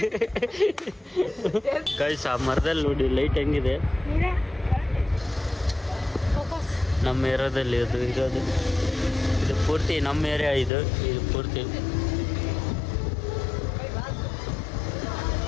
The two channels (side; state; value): right; drops out; at 10.7 s